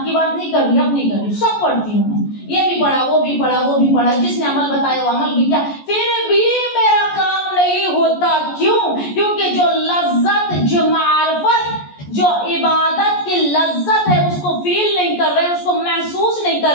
बात नहीं कर रही, अपनी कर रही, सब पढ़ती हूँ मैं। ये भी पढ़ा, वो भी पढ़ा, वो भी पढ़ा, जिसने अमल बताया वो अमल भी किया, फिर भी मेरा काम नहीं होता। क्यों? क्योंकि जो लज्जत, जो मार्फत, जो इबादत की लज्जत है उसको फील नहीं कर रहे, उसको महसूस नहीं कर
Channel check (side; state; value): right; late; 14 ms